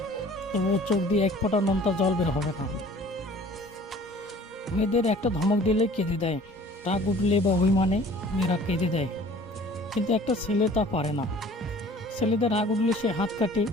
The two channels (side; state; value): both; normal; correlation 0.50